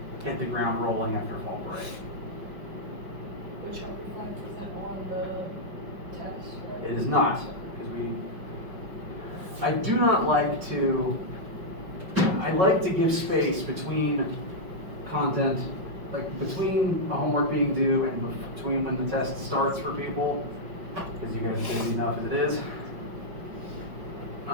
hit the ground rolling after fall break. The Chapter 5 isn't on the test, right? It is not, because I do not like to, I like to give space between content, like between a homework being due and between when the test starts for people, because you guys are busy enough as it is.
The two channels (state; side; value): late; left; 5.4 ms